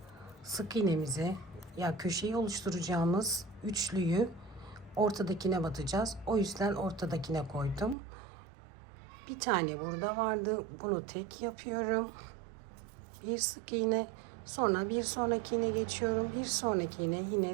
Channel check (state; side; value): drops out; left; at 8.0 s